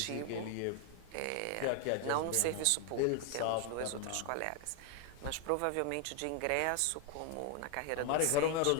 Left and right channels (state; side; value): different; both; correlation 0.01